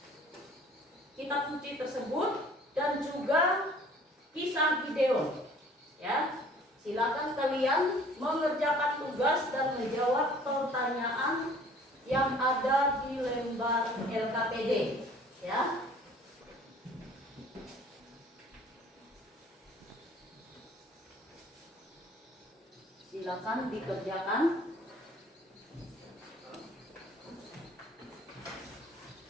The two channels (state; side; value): normal; both; correlation 0.53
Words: kitab suci tersebut dan juga kisah Gideon, ya. Silakan kalian mengerjakan tugas dan menjawab pertanyaan yang ada di lembar LKPD, ya. Silakan dikerjakan.